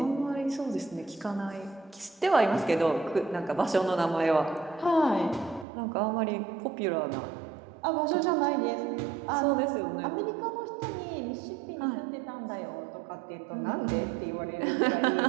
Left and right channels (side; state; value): left; drops out; at 5.7 s